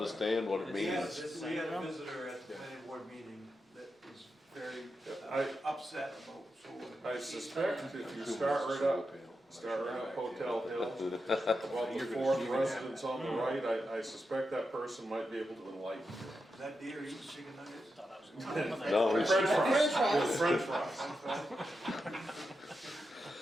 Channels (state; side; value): normal; both; correlation 0.88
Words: what it We had means. we had a visitor at the planning board meeting that was very upset about solar. I suspect if you start right up Hotel Hill, well, before the residence on the right, I suspect that person might be able to enlighten you. Is that deer eating chicken nuggets? thought I was gonna. No, he's, French fries.